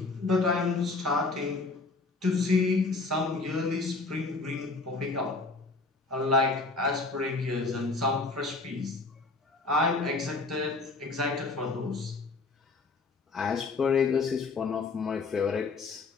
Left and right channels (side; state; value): right; quieter; 3.7 dB